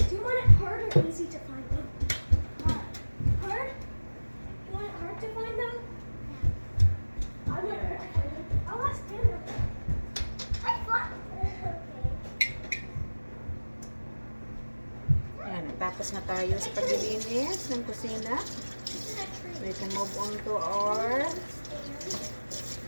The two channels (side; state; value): both; inverted; correlation -1.00